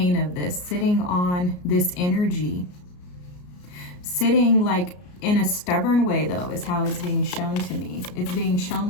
of this, sitting on this energy. Sitting like in a stubborn way, though, is how it's being shown to me. It's being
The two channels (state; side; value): late; right; 33 ms